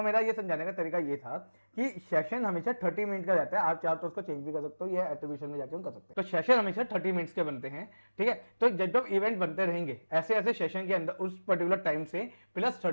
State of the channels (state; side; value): inverted; both; correlation -1.00